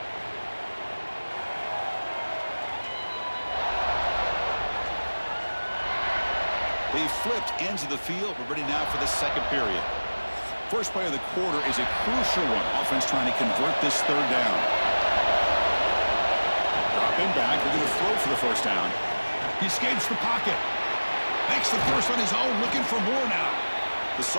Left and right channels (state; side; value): inverted; both; correlation -1.00